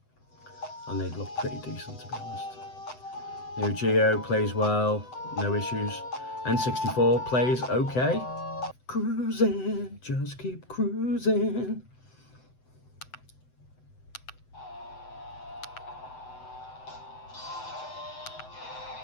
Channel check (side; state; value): right; late; 7.9 ms